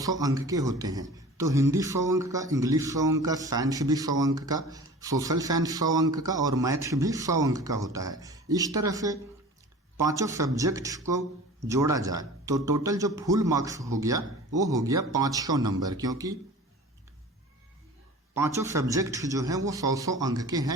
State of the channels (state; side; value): normal; both; correlation 0.40